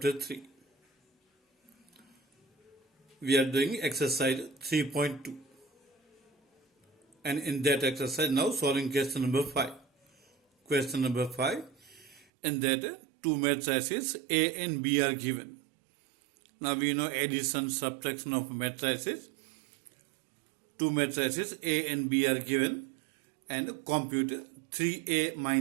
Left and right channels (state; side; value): drops out; left; at 12.2 s